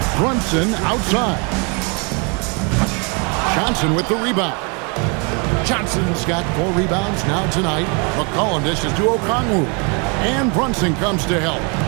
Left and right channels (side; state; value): left; quieter; 33.9 dB